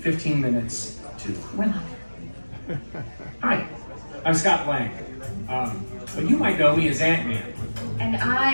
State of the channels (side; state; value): both; inverted; correlation -1.00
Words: minutes to. We're not. Hi, I'm Scott Lang. But you might know me as Ant-Man. And